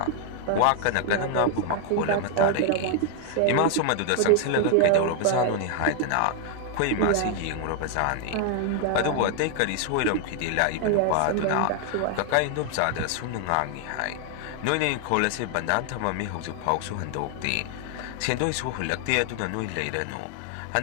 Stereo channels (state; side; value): different; both; correlation 0.00